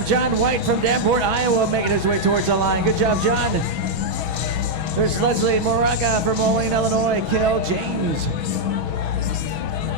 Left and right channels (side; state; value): left; late; 6.2 ms